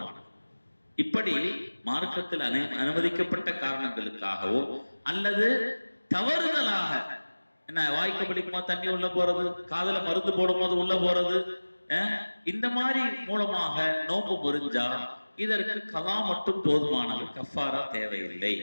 இப்படி மார்க்கத்தில் அனுமதிக்கப்பட்ட காரணங்களுக்காகவோ அல்லது தவறுதலாக என்ன வாய்க்கு பிடிக்குமா தண்ணி உள்ள போறது, காதுல மருந்து போடும் போது உள்ள போறது, இந்த மாதிரி மூலமாக நோன்பு முறிஞ்சா இதற்கு கலா மட்டும் போதுமானது, கஃபாரா தேவையில்லை.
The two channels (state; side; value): inverted; both; correlation -1.00